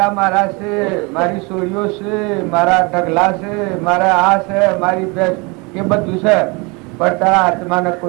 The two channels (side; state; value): left; quieter; 28.3 dB